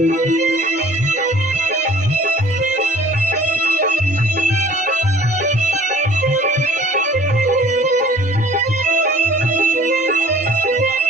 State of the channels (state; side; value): normal; both; correlation 0.50